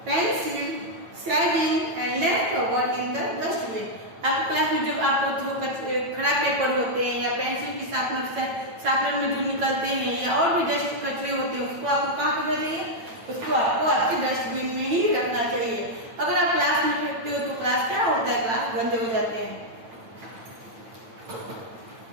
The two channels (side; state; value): left; late; 9.0 ms